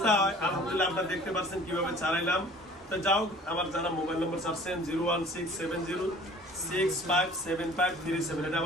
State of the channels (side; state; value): both; normal; correlation 0.49